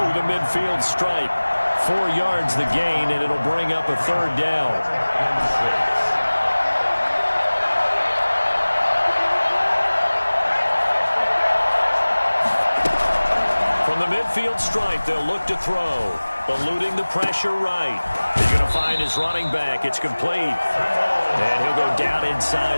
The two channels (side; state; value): both; inverted; correlation -1.00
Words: the midfield stripe. 4 yards the gain, and it'll bring up a 3rd down. From From the midfield stripe, they'll look to throw. Eluding the pressure right. He's going to find his running back. It's complete. And he'll go down